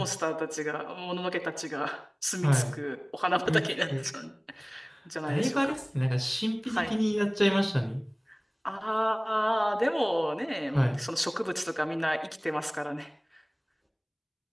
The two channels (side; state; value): both; identical; correlation 1.00